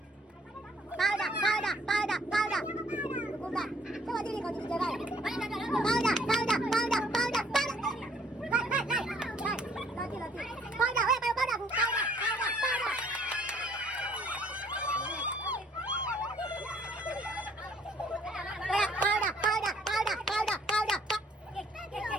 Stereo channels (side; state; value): both; normal; correlation 0.61